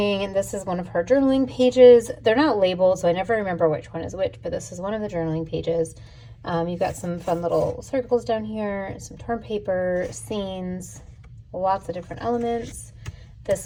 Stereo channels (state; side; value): identical; both; correlation 1.00